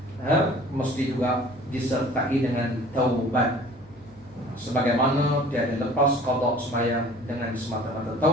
mesti juga disertai dengan taubat. Sebagaimana tiada lepas qada sembahyang dengan semata-mata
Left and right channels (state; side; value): noise; left; hum, 24 dB below the sound